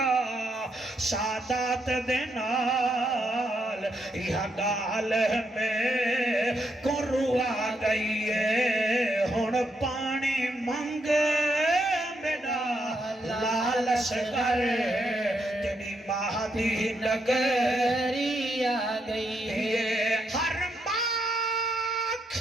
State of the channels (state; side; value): normal; both; correlation 0.78